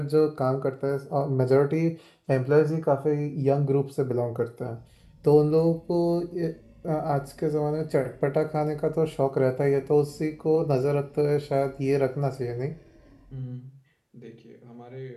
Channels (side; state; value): both; identical; correlation 1.00